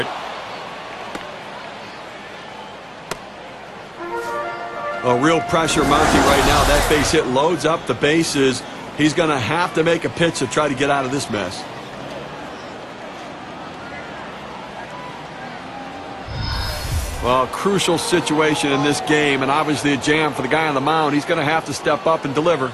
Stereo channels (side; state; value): both; identical; correlation 1.00